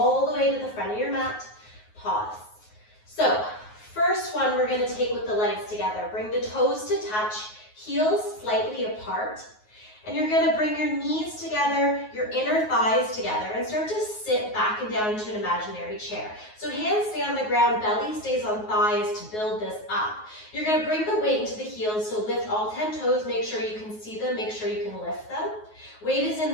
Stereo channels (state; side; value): late; right; 9.4 ms